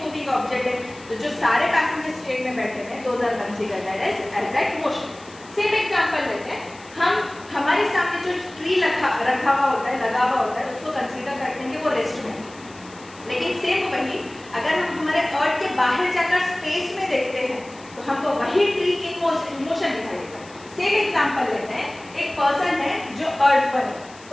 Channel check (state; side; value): noise; left; hiss, 22 dB below the sound